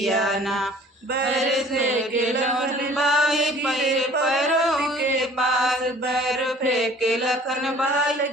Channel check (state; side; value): normal; both; correlation 0.51